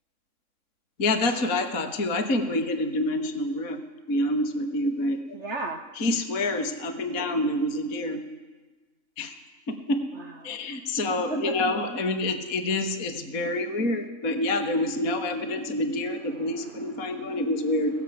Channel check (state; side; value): late; right; 3.6 ms